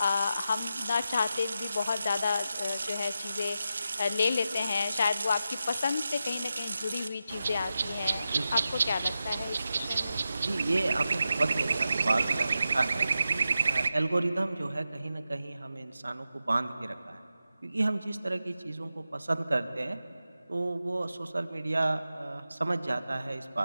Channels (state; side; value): inverted; both; correlation -0.90